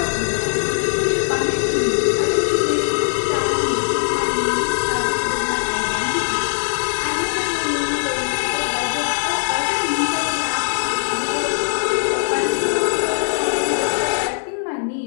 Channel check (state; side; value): silent; right; 66 dB below the other